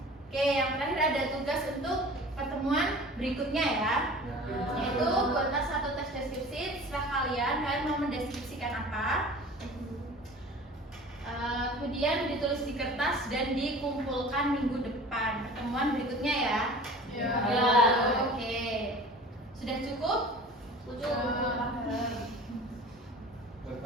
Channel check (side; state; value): both; normal; correlation 0.42